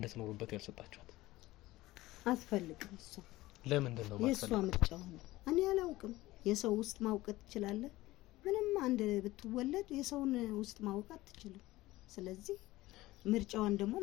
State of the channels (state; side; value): quieter; right; 17.9 dB